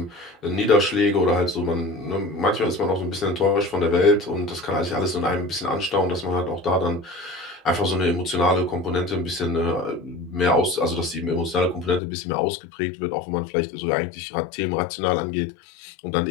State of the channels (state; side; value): drops out; right; at 12.0 s